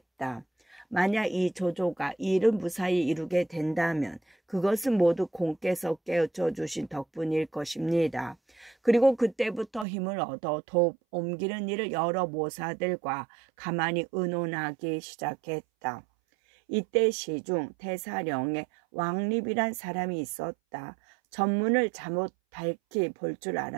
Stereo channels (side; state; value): left; drops out; at 9.9 s